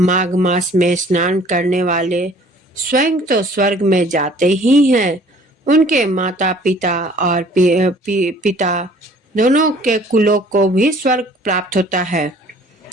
मास में स्नान करने वाले स्वयं तो स्वर्ग में जाते ही हैं, उनके माता पिता और पिता दोनों के कुलों को भी स्वर्ग प्राप्त होता है।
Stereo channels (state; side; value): normal; both; correlation 0.54